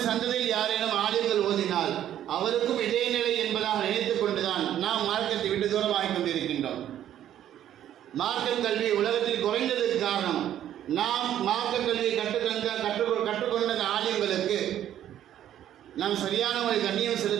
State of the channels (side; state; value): left; quieter; 11.3 dB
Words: சந்ததியில் யாரேனும் ஆலிம்கள் ஓதினால் அவருக்கும் இதே நிலை என்பதாக நினைத்துக் கொண்டுதான் நாம் மார்க்கத்தை விட்டு தூரமாகிக் கொண்டிருக்கின்றோம். மார்க்க கல்வி உலகத்தில் குறைந்ததற்கு காரணம், நாம் மார்க்க கல்வியை கற்றுக்கொண்ட ஆலிம்களுக்கு நாம் சரியான ஒரு கண்ணியம்